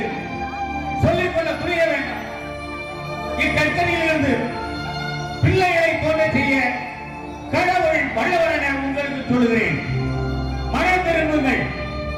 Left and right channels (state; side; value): identical; both; correlation 1.00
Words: சொல்லிக்கொள்ள துணிய வேண்டாம். இக்கச்சனையிலிருந்து பிள்ளைகளை தோன்ற செய்ய கடவுள் வல்லவர் என உங்களுக்கு சொல்லுகிறேன். மனம் திரும்புங்கள்.